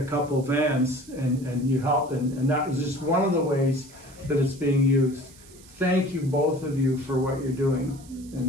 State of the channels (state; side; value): noise; right; hiss, 23 dB below the sound